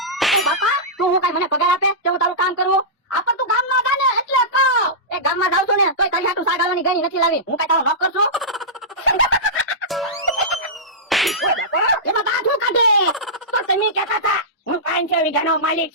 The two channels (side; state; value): both; normal; correlation -0.16